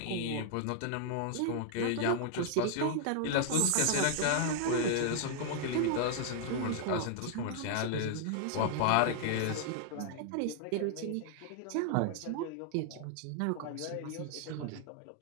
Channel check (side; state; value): both; different; correlation 0.00